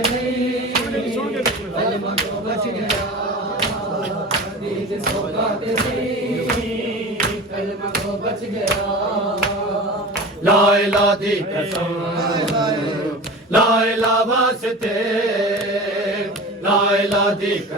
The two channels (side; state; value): both; normal; correlation 0.34